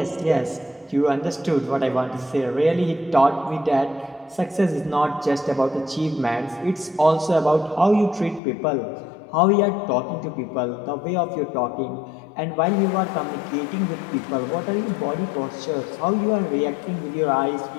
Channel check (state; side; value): drops out; right; at 8.4 s